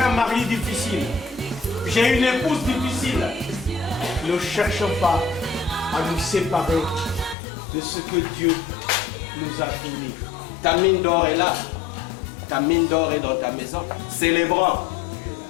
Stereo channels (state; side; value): drops out; right; at 7.4 s